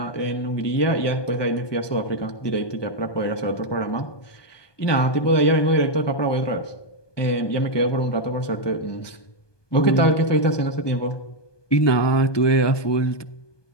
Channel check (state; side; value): late; right; 1.2 ms